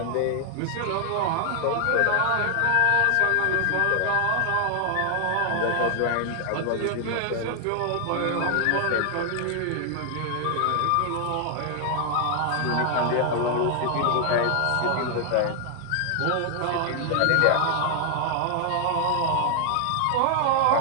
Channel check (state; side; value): different; both; correlation 0.00